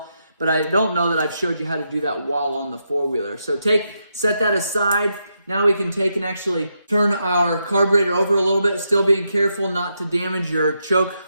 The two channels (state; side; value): inverted; both; correlation -0.82